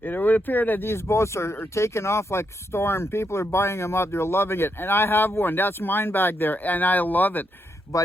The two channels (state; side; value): normal; both; correlation 0.81